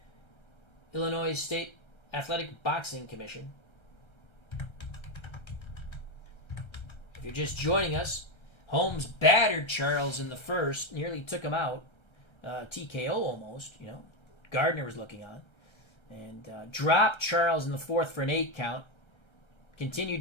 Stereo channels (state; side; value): late; right; 1.3 ms